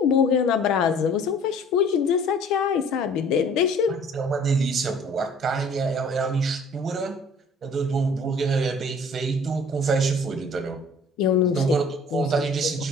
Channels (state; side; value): normal; both; correlation 0.52